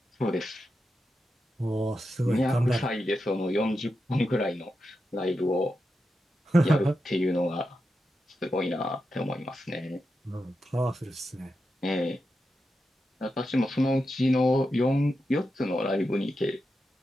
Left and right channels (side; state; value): both; normal; correlation 0.88